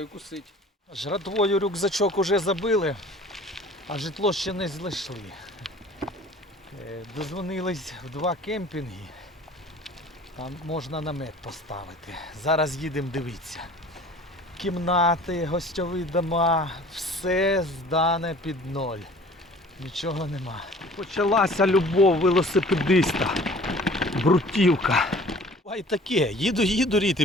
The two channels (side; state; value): both; normal; correlation 0.48